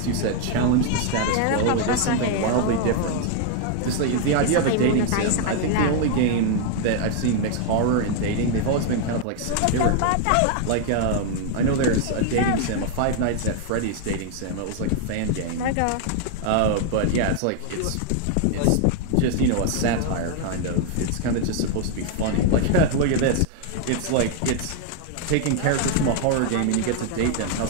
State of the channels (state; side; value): different; both; correlation 0.00